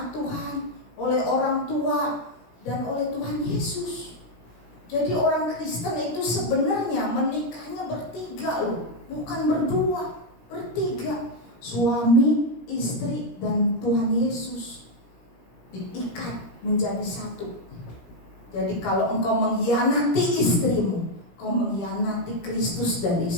Tuhan, oleh orang tua, dan oleh Tuhan Yesus. Jadi orang Kristen itu sebenarnya menikahnya bertiga loh, bukan berdua, bertiga. Suami, istri, dan Tuhan Yesus diikat menjadi satu. Jadi kalau engkau mengkhianati istrimu, kau mengkhianati Kristus dan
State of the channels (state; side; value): late; right; 17 ms